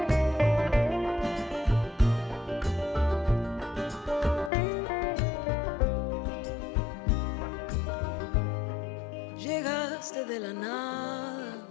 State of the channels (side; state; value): right; drops out; at 4.5 s